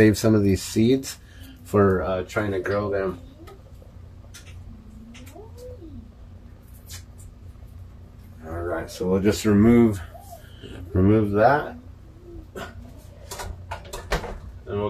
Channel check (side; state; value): both; identical; correlation 1.00